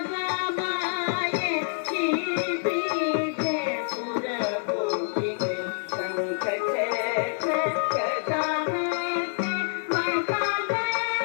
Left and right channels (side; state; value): right; silent; digital silence